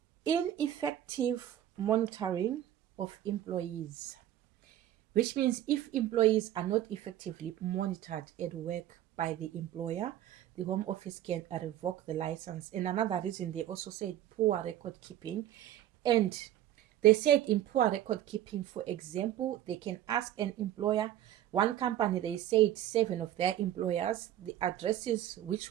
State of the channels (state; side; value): quieter; left; 12.3 dB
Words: ineffective monitoring of employees, which means if employees are not effectively monitored at work by the employer, the Home Office can revoke the license. And another reason, they also said poor record keeping. And they said in poor record keeping, for example, they can ask an employer. One company, they said 7 of their employers, the addresses which